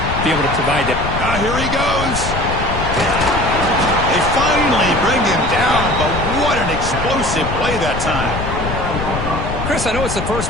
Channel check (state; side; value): noise; left; rumble, 5 dB below the sound